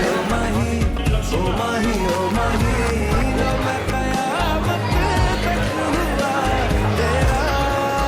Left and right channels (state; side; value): identical; both; correlation 1.00